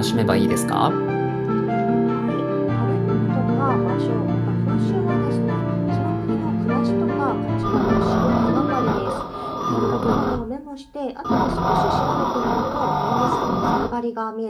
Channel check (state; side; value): identical; both; correlation 1.00